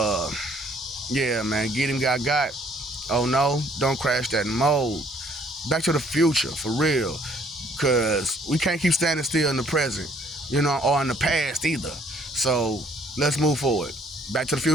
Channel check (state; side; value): normal; both; correlation 0.62